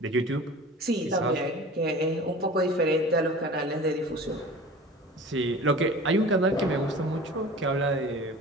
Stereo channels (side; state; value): both; normal; correlation 0.40